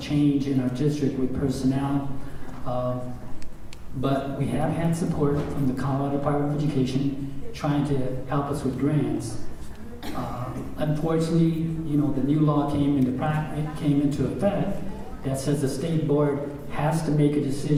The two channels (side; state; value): both; identical; correlation 1.00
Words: change in our district with personnel. But we have had support from the Colorado Department of Education trying to help us with grants. Unfortunately, the new law came into effect that says the state board has to make a